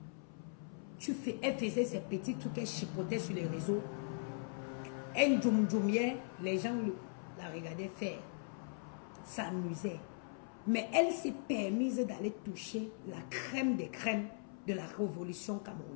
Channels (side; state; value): right; silent; 51 dB below the other